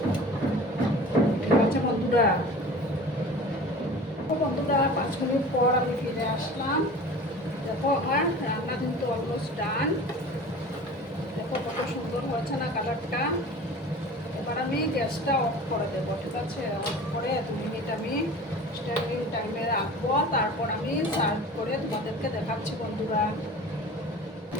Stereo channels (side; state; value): both; normal; correlation 0.39